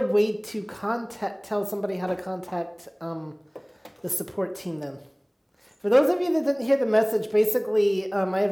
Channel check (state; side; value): identical; both; correlation 1.00